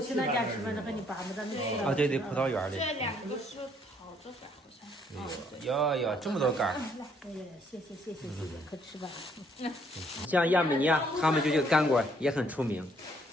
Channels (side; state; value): both; normal; correlation 0.67